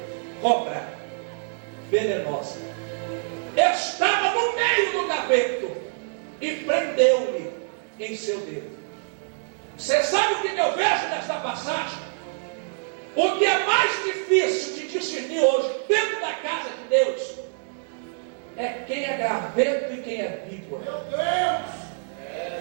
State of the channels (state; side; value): silent; left; digital silence